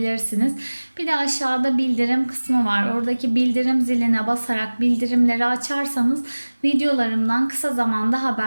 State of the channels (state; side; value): inverted; both; correlation -1.00